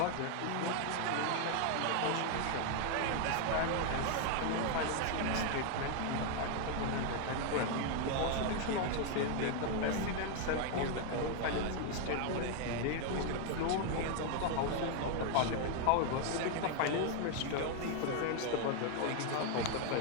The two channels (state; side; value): different; both; correlation 0.01